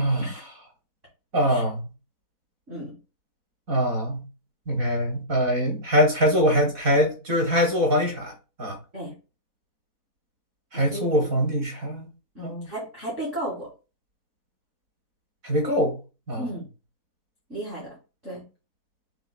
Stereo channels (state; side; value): late; left; 4.1 ms